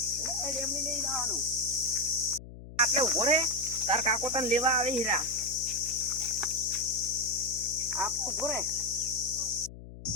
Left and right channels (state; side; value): noise; left; hum, 15 dB below the sound